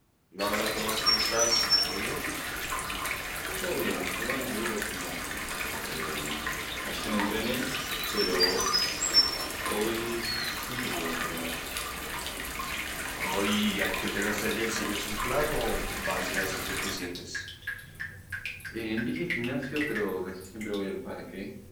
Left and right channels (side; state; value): both; identical; correlation 1.00